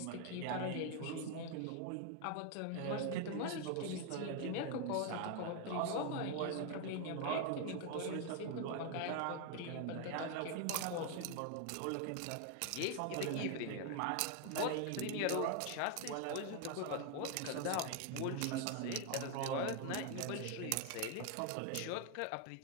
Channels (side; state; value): both; different; correlation 0.00